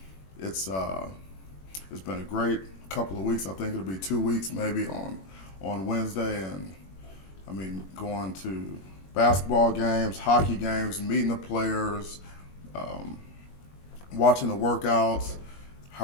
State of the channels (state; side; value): late; right; 21 ms